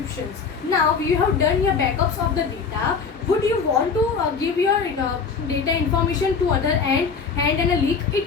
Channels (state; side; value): quieter; right; 5.5 dB